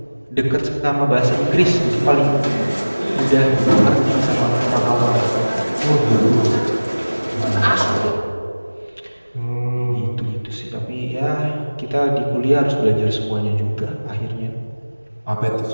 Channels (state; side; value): inverted; both; correlation -1.00